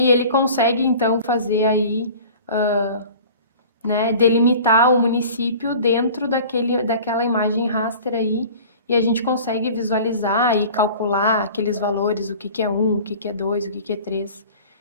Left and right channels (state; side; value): inverted; both; correlation -0.43